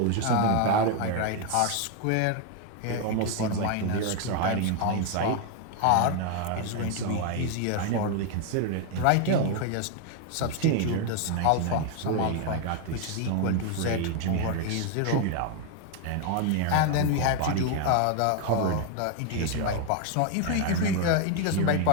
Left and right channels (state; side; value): different; both; correlation 0.01